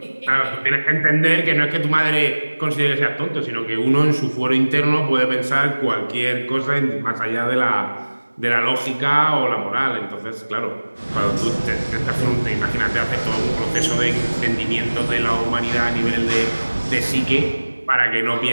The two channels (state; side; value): inverted; both; correlation -1.00